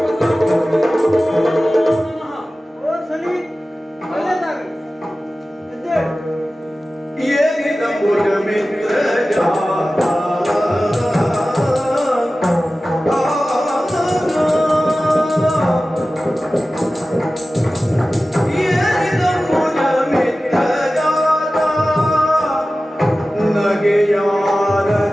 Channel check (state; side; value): normal; both; correlation 0.95